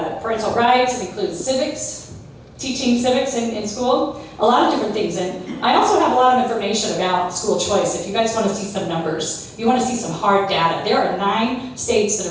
rights, it includes civics, teaching civics in school, a lot of different things. And I also have a lot of information about school choice. If you guys want to see some numbers, you want to see some hard data. There are 9 states that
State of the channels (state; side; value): identical; both; correlation 1.00